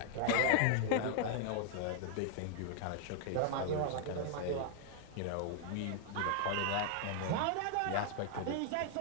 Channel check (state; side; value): different; both; correlation 0.00